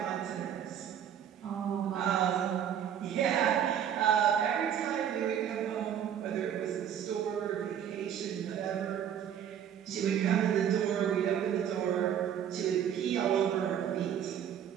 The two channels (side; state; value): left; quieter; 9.3 dB